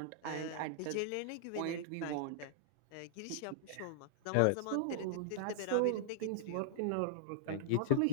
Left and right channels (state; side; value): different; both; correlation -0.01